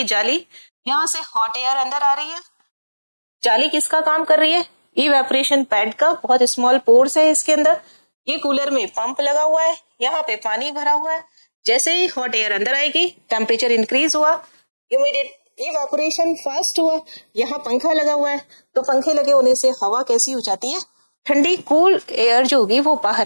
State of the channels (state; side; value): inverted; both; correlation -1.00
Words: जाली, यहाँ से हॉट एयर अंदर आ रही है। जाली किसका काम कर रही है? इवेपोरेशन पैड का। बहुत स्मॉल पोर्स है इसके अंदर। ये कूलर में पंप लगा हुआ है, यहाँ पे पानी भरा हुआ है। जैसे ही हॉट एयर अंदर आएगी, टेम्परेचर इंक्रीज हुआ, इवेपोरेशन फास्ट हुआ। यहाँ पंखा लगा हुआ है, तो पंखे लगे होने से हवा कैसी हो जाती है? ठंडी। कूल एयर जो होगी वो